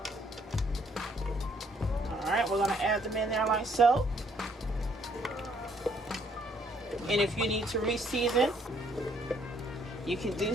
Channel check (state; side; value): normal; both; correlation 0.66